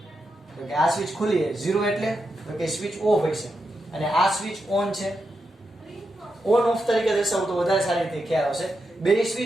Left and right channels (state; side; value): normal; both; correlation 0.86